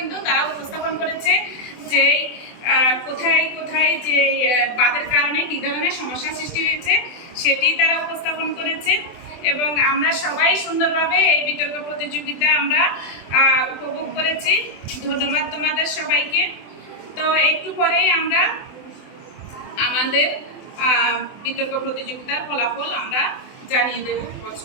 তারা উপস্থাপন করেছে যে কোথায় কোথায় যে বাঁধের কারণে কী ধরনের সমস্যা সৃষ্টি হয়েছে সেটি তারা উপস্থাপন করেছে এবং আমরা সবাই সুন্দরভাবে এই বিতর্ক প্রতিযোগিতা আমরা উপভোগ করেছি। ধন্যবাদ তোমাদের সবাইকে। তো একটু পরেই আমরা আমাদের বিতর্ক প্রতিযোগিতার ফলাফল আমরা জানিয়ে দেব।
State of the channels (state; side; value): late; right; 24 ms